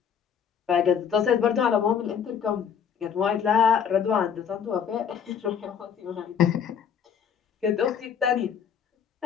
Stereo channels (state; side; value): quieter; right; 7.7 dB